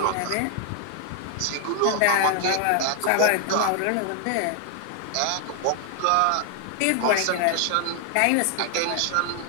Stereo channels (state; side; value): different; both; correlation 0.00